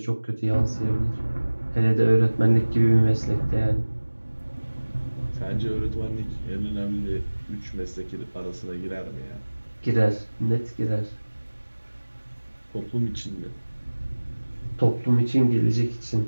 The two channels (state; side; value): inverted; both; correlation -1.00